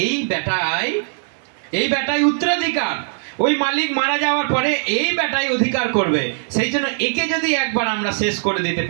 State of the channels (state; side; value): silent; left; 66 dB below the other